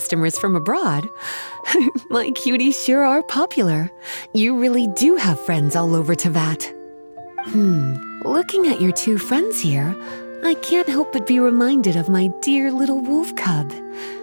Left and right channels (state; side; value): inverted; both; correlation -1.00